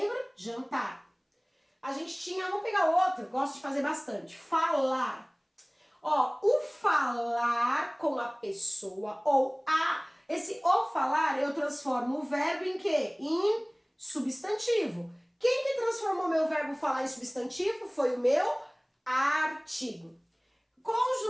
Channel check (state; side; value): identical; both; correlation 1.00